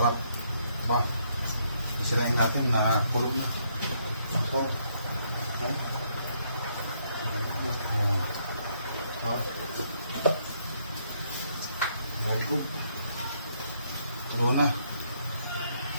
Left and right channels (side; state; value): both; inverted; correlation -0.72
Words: Diba? Isirain natin na pulo na. So, okay. Very good. Pulo na.